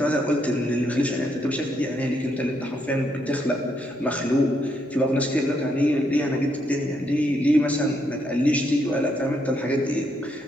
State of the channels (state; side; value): normal; both; correlation 0.76